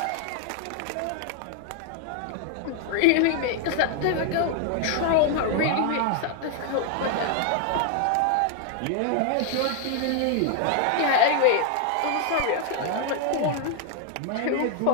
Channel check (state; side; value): different; both; correlation 0.00